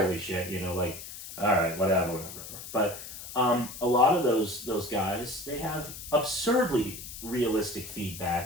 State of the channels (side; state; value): left; noise; hiss, 12 dB below the sound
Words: shit. You know, like, all right, whatever. But a lot of those guys, they have absurdly realistic